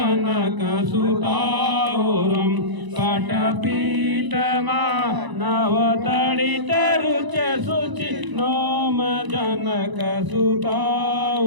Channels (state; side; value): late; left; 1.0 ms